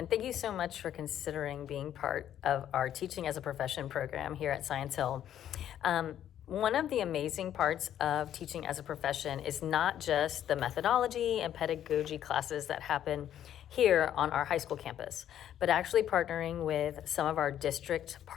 thank you so much for considering being part of our Teaching as a Profession program here at Science Hill. One of the amazing parts of teaching as a profession is not just the methodology and pedagogy classes that happen here on our high school campus, but actually partnering with some of our district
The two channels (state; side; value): quieter; right; 10.7 dB